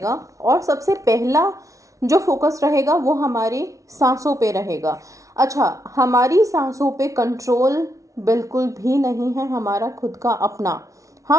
और सबसे पहला जो फोकस रहेगा वो हमारी सांसों पे रहेगा। अच्छा, हमारी सांसों पे कंट्रोल बिल्कुल भी नहीं है हमारा खुद का अपना।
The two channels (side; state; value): left; late; 0.16 ms